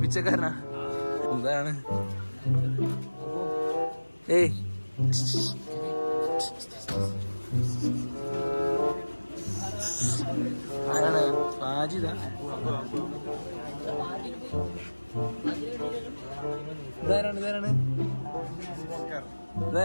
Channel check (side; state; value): both; inverted; correlation -1.00